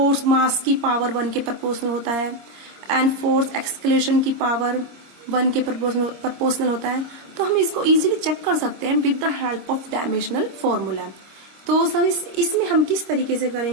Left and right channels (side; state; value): left; late; 25 ms